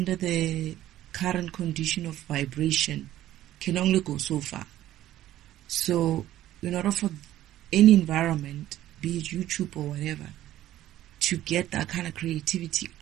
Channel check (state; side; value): quieter; left; 13.6 dB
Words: the current condition of vibration can only go so far. So, in order for any environment, be it YouTube or whatever, to get that kind of creativity